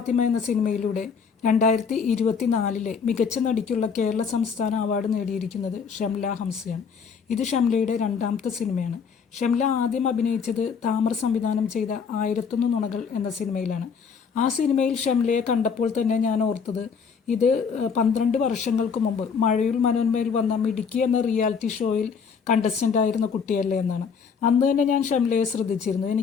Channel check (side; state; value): right; quieter; 6.1 dB